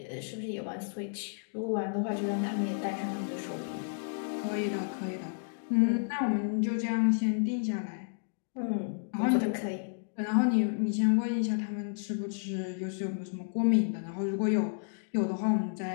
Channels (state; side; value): silent; right; digital silence